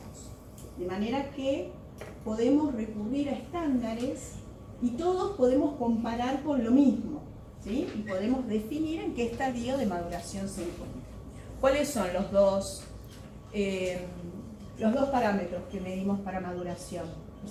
de manera que podemos recurrir a estándares y todos podemos comparar con lo mismo, ¿sí? Y podemos definir en qué estadio de maduración se encuentra. ¿Cuáles son los dos parámetros que medimos para maduración?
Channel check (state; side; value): identical; both; correlation 1.00